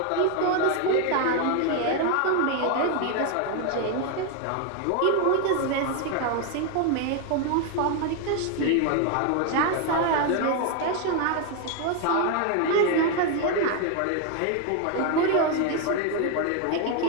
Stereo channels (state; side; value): different; both; correlation 0.01